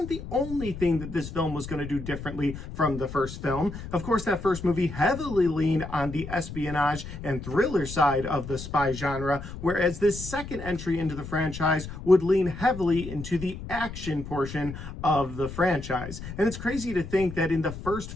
the only thing that this film was going to do differently from the first film. Of course, that first movie heavily leaned on the espionage and thriller side of the spy genre, whereas this second entry into the franchise would lean heavily into the action portion of the franchise. And it's crazy to think that in the first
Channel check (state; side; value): noise; left; rumble, 10 dB below the sound